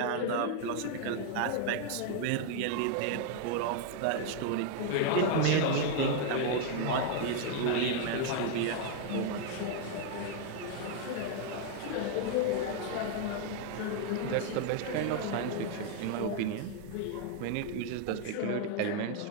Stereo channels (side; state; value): both; different; correlation 0.00